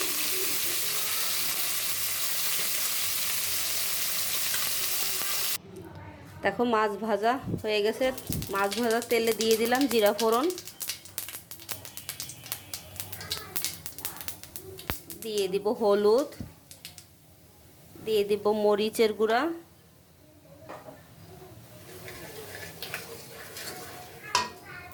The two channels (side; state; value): both; identical; correlation 1.00